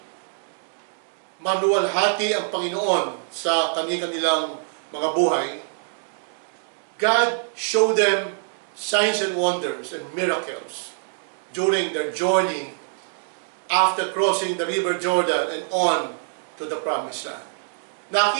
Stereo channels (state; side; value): silent; left; digital silence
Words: maluwalhati ang Panginoon sa kanilang mga buhay. God showed them signs and wonders and miracles during their journey after crossing the River Jordan and on to the Promised Land.